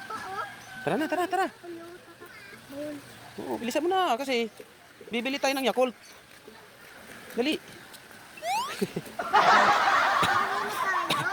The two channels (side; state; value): both; identical; correlation 1.00